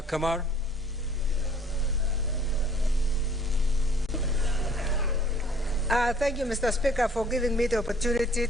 Kamar. Thank you, Mr. Speaker, for giving me the opportunity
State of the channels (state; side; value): normal; both; correlation 0.56